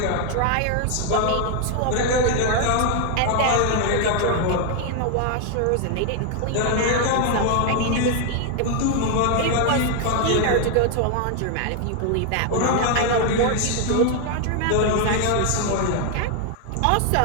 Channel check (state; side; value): different; both; correlation 0.00